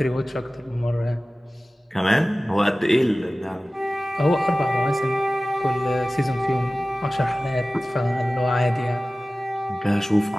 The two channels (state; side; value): normal; both; correlation 0.97